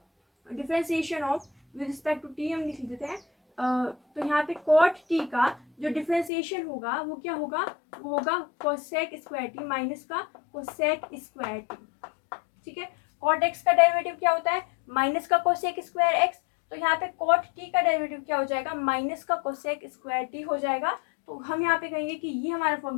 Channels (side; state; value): right; drops out; at 6.3 s